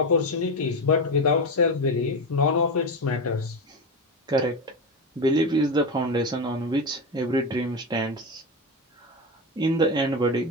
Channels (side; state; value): both; normal; correlation 0.16